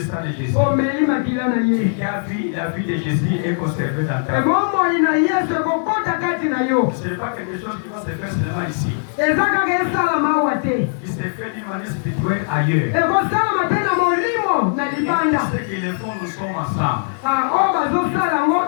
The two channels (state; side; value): silent; right; 63 dB below the other